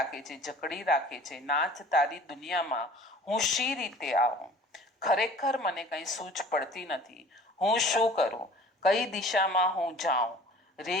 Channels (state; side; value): normal; both; correlation 0.46